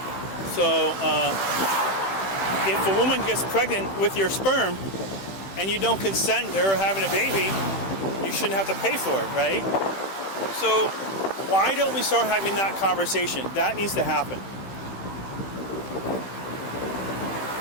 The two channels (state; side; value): late; right; 15 ms